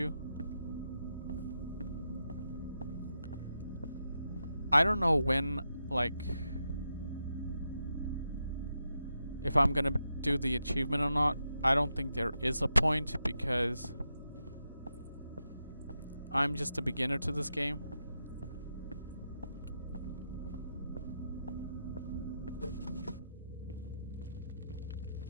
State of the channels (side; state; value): both; inverted; correlation -0.85